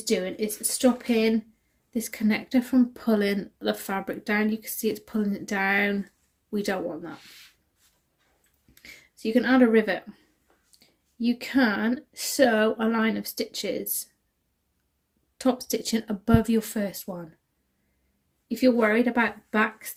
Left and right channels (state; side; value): identical; both; correlation 1.00